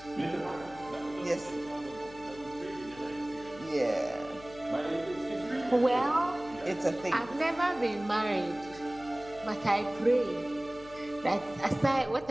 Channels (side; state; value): left; noise; hum, 19 dB below the sound